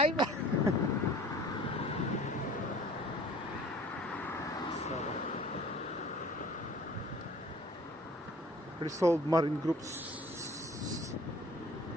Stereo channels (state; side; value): normal; both; correlation 0.48